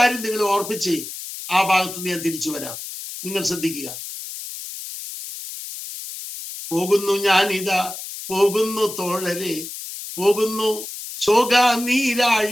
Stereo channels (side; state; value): left; noise; hiss, 10 dB below the sound